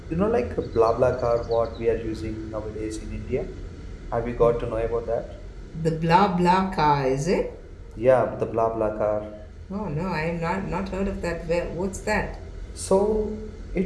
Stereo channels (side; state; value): both; identical; correlation 1.00